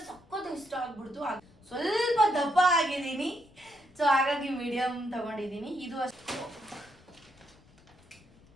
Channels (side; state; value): left; noise; rumble, 27 dB below the sound